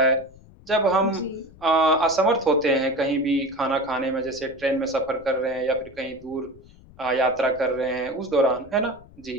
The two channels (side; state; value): left; noise; rumble, 23 dB below the sound